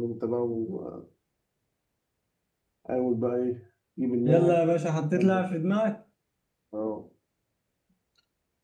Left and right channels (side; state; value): both; identical; correlation 1.00